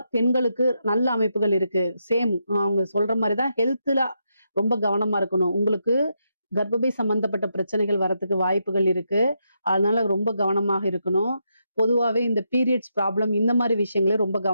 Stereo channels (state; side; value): inverted; both; correlation -0.82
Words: பெண்களுக்கு நல்ல அமைப்புகள் இருக்கு. சேம் அவங்க சொல்ற மாதிரிதான் ஹெல்த்ல ரொம்ப கவனமா இருக்கணும். உங்களுக்கு கர்ப்பப்பை சம்பந்தப்பட்ட பிரச்சனைகள் வரத்துக்கு வாய்ப்புகள் இருக்கு. அதனால ரொம்ப கவனமாக இருக்கணும். பொதுவாவே இந்த பீரியட்ஸ் ப்ராப்ளம் இந்த மாதிரி விஷயங்களே ரொம்ப